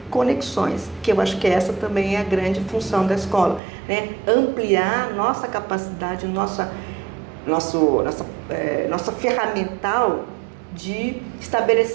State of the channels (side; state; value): left; drops out; at 3.6 s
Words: conexões, que eu acho que essa também é a grande função da escola, né? Ampliar nossa capacidade, nossa ferramental de